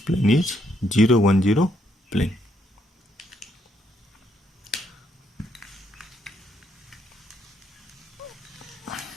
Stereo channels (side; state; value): both; normal; correlation 0.75